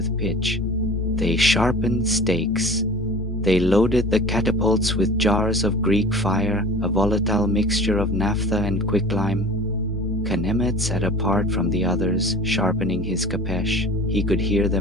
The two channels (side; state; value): both; normal; correlation 0.40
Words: pitch. They sharpened stakes. They loaded the catapults with jars of Greek fire, a volatile mixture of naphtha and quicklime. Khenemet sat apart from the others, sharpening his kapesh. He could hear